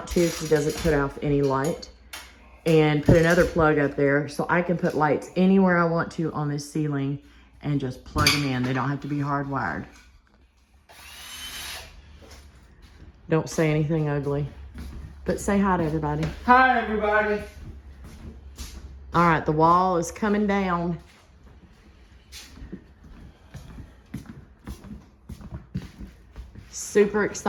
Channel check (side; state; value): both; identical; correlation 1.00